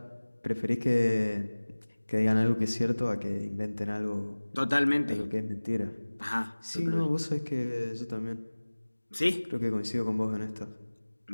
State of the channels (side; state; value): both; inverted; correlation -1.00